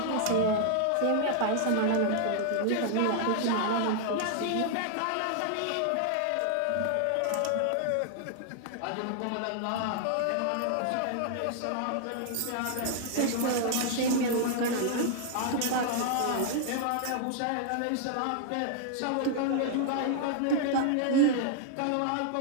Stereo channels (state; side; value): different; both; correlation -0.01